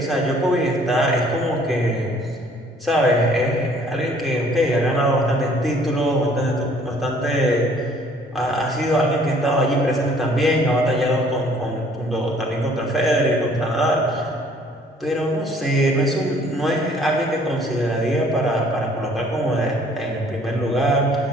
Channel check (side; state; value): both; normal; correlation 0.58